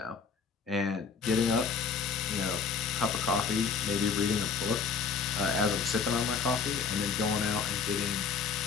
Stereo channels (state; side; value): quieter; right; 5.8 dB